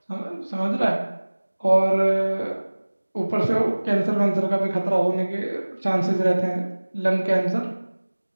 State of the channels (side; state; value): both; inverted; correlation -1.00